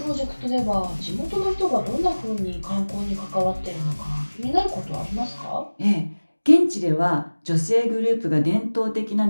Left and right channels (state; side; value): inverted; both; correlation -1.00